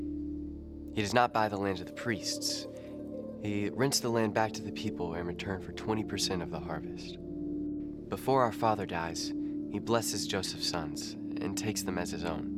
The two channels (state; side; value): identical; both; correlation 1.00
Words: He does not buy the land of the priests. He rents the land back to the people in return for 20% of the harvest. Before our father dies, he blesses Joseph's sons and takes them as his own.